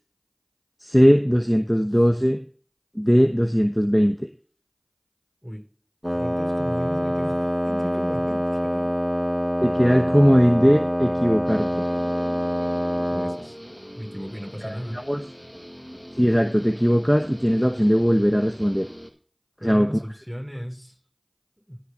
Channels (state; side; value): identical; both; correlation 1.00